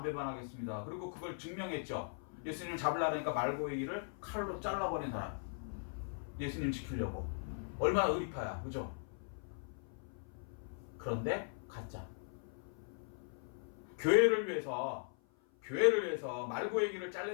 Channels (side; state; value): right; silent; 52 dB below the other